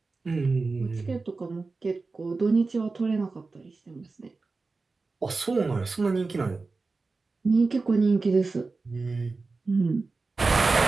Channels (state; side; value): quieter; left; 3.9 dB